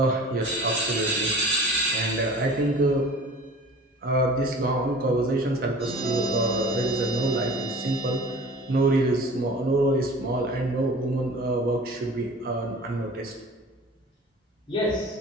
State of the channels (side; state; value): both; normal; correlation 0.42